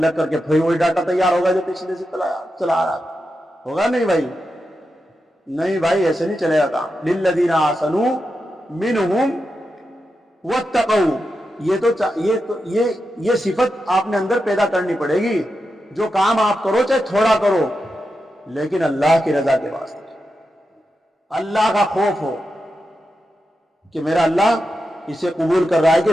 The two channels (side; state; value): both; normal; correlation 0.88